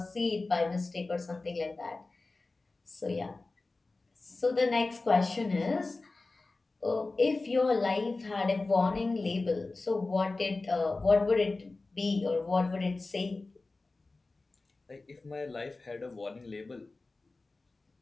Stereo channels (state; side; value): quieter; right; 3.4 dB